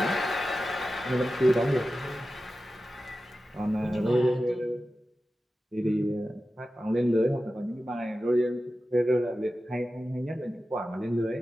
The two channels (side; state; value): both; normal; correlation 0.94